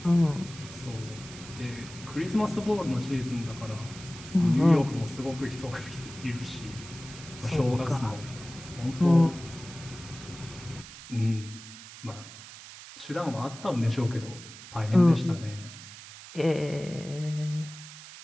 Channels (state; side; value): noise; right; hiss, 15 dB below the sound